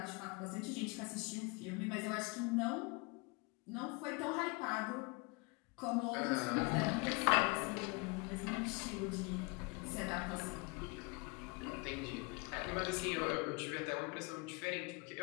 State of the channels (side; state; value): right; quieter; 29.0 dB